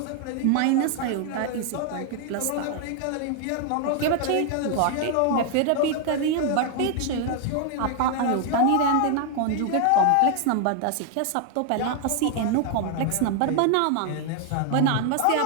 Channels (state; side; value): different; both; correlation 0.00